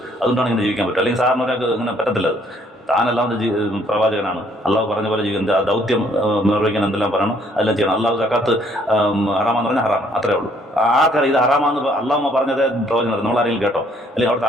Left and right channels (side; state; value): both; normal; correlation 0.64